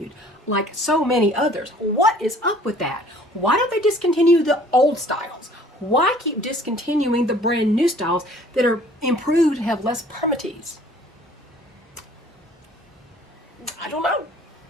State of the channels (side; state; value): both; normal; correlation 0.53